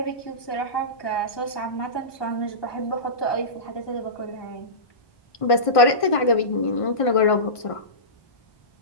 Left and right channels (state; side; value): late; right; 1.5 ms